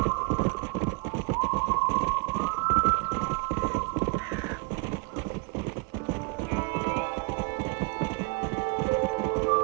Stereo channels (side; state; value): left; quieter; 31.0 dB